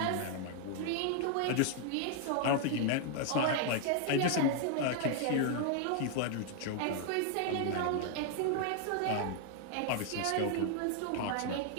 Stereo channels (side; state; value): both; different; correlation 0.00